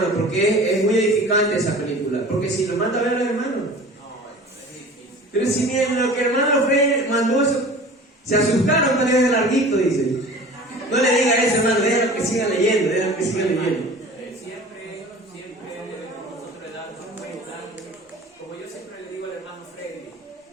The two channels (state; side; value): normal; both; correlation 0.41